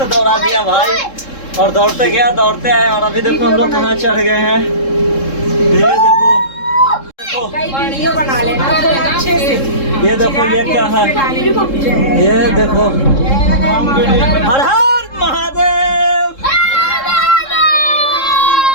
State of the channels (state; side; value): late; right; 3.7 ms